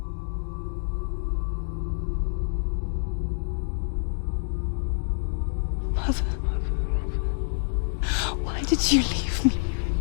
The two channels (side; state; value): right; silent; digital silence